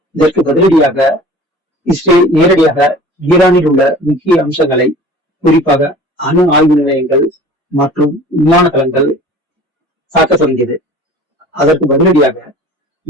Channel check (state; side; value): normal; both; correlation 0.44